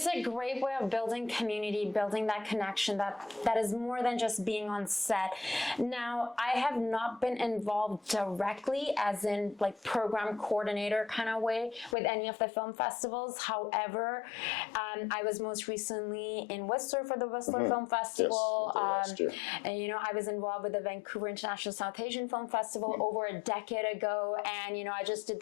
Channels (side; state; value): right; drops out; at 12.0 s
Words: a great way of building community, building that connection that is more than just being on set. Now, I have not been involved directly as in like program coordinator kind of way with any of the film festivals. However, I was most recently in Whistler for the Whistler Film Festival. Yes, and you know, I was involved with the Vancouver International South Asian Film Festival over a decade ago. And, you know, I just did